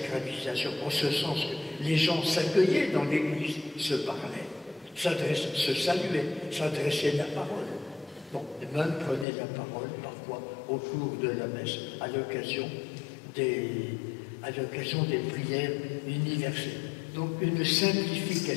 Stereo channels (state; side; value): drops out; right; at 9.2 s